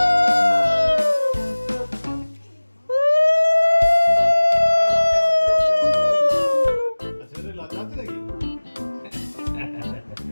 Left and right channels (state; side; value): inverted; both; correlation -1.00